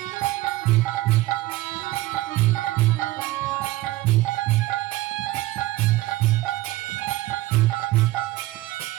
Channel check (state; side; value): quieter; left; 17.3 dB